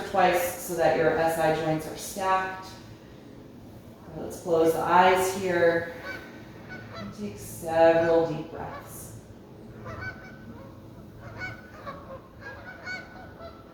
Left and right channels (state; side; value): identical; both; correlation 1.00